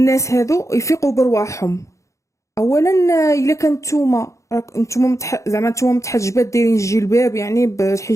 هادو يفيقوا برواحهم. اولا الا كان نتوما راك نتوما زعما نتوما متحجبات دايرين الجلباب يعني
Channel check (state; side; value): late; right; 0.15 ms